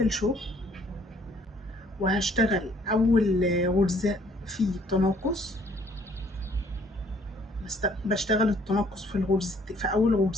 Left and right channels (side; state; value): both; normal; correlation 0.61